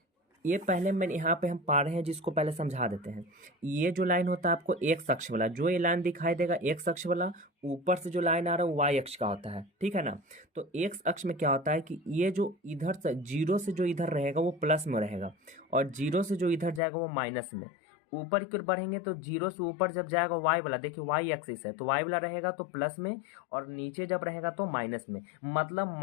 ये पहले मैंने यहाँ पे हम पा रहे हैं जिसको पहले समझा देते हैं। ये जो लाइन होता है आपको एक्स अक्ष वाला, जो ये लाइन दिखाई देगा एक्स अक्ष वाला, ऊपर से जो लाइन आ रहा है वो वाई अक्ष का होता है, ठीक है ना। तो एक्स अक्ष में क्या होता है कि ये जो इधर से जीरो से जो इधर रहेगा वो प्लस में रहेगा, और जीरो से जो इधर जाएगा वो माइनस में। ऊपर की ओर बढ़ेंगे तो जीरो से ऊपर जब जाएगा वाई वाला, देखिए वाई एक्सिस है तो वाई वाला रहेगा तो प्लस में, और नीचे जब रहेगा तो माइनस में। मतलब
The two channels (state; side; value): drops out; right; at 16.8 s